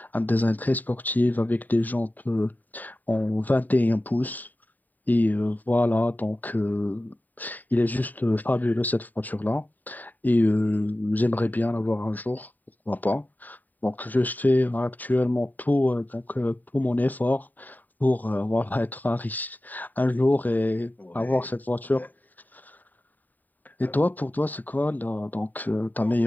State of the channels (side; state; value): right; late; 0.086 ms